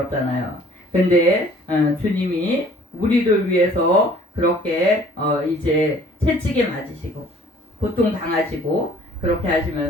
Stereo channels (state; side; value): normal; both; correlation 0.54